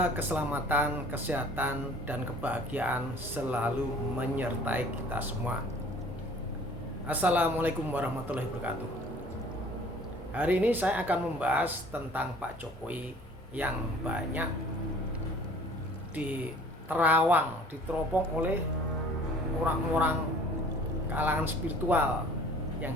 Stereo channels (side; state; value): both; normal; correlation 0.51